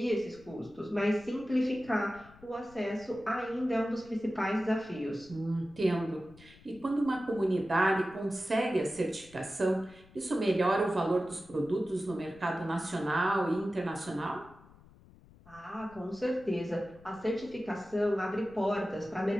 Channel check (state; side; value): noise; left; rumble, 23 dB below the sound